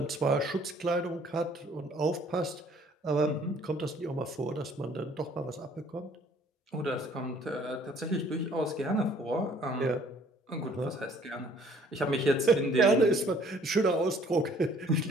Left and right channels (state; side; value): normal; both; correlation 0.58